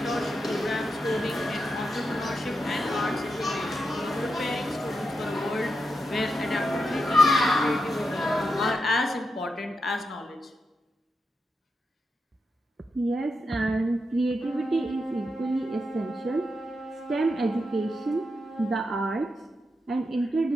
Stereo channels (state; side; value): normal; both; correlation 0.86